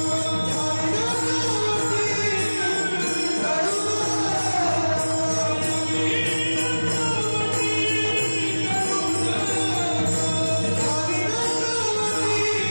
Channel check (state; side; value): inverted; both; correlation -1.00